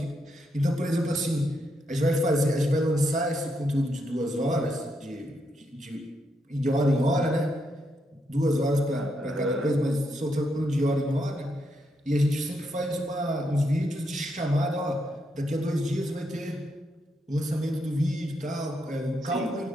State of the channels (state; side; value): normal; both; correlation 0.80